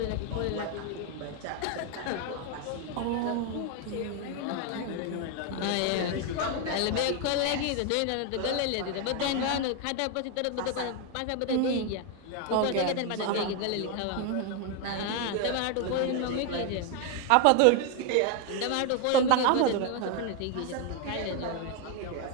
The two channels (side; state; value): both; different; correlation 0.01